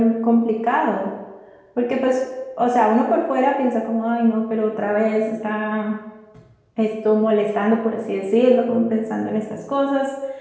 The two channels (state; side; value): identical; both; correlation 1.00